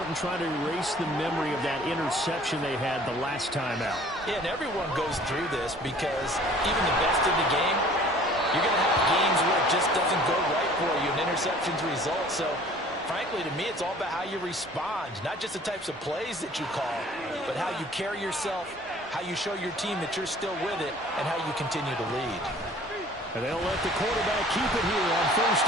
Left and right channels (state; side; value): normal; both; correlation 0.51